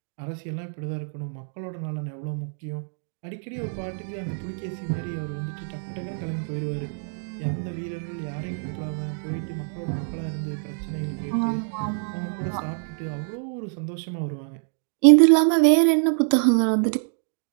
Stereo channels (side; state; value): left; silent; 61 dB below the other